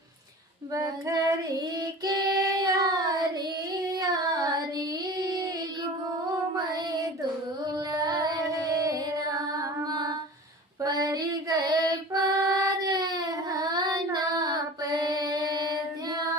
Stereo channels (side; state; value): both; normal; correlation 0.37